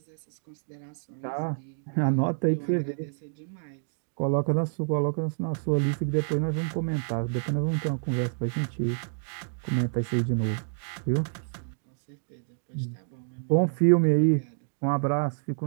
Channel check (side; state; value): left; silent; digital silence